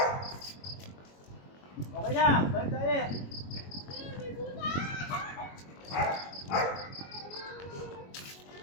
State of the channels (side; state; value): right; late; 21 ms